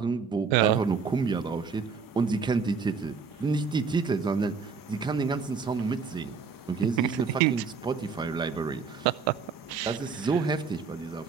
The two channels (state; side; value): quieter; left; 5.4 dB